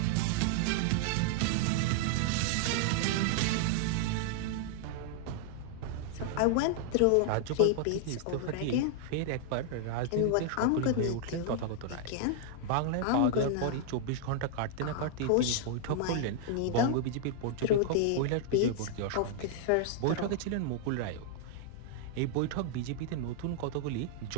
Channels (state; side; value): different; both; correlation -0.01